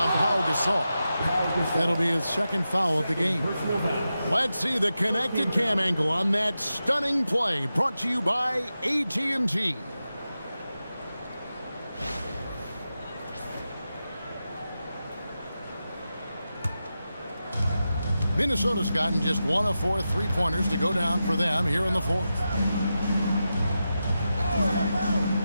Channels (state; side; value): inverted; both; correlation -0.91